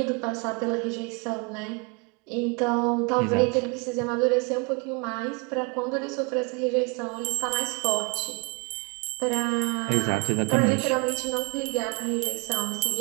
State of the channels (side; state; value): left; quieter; 28.5 dB